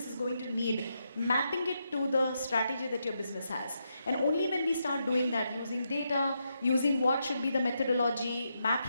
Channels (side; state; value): both; inverted; correlation -0.82